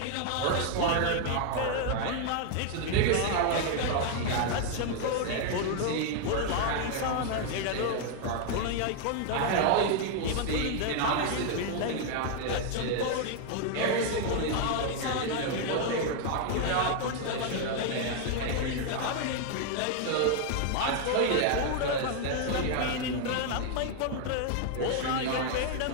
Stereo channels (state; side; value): different; both; correlation 0.00